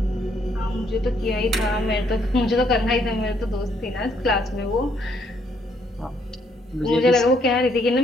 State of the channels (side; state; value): both; normal; correlation 0.70